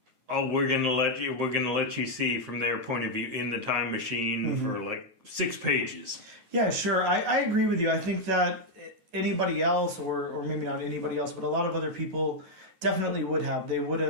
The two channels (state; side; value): late; left; 9.4 ms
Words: oh, we're gonna let you see from their point of view in the time machine for 6 pages. Yeah, sure. I agree with you. I think that anybody else, or maybe not anybody else, but a lot of other people definitely would have. They would